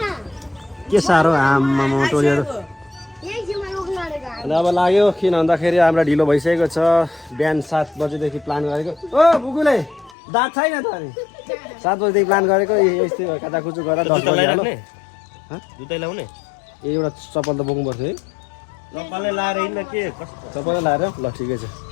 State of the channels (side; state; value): right; drops out; at 10.2 s